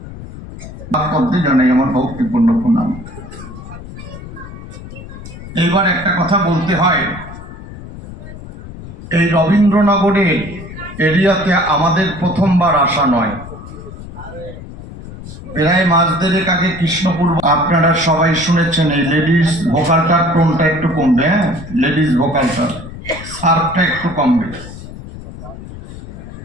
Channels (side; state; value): left; noise; rumble, 13 dB below the sound